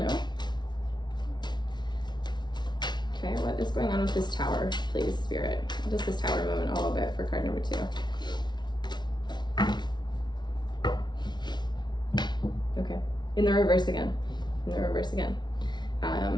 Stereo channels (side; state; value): right; late; 0.21 ms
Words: Okay, what is going on with this Tower, please, Spirit? What is this Tower moment all about for card number 2? Okay, in the reverse again. In the reverse again.